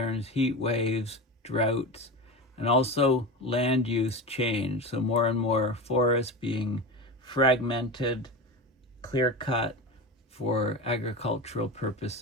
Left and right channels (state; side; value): normal; both; correlation 0.23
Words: heat waves, droughts, and also land use change. So more and more forests being fragmented, clear-cut for agricultural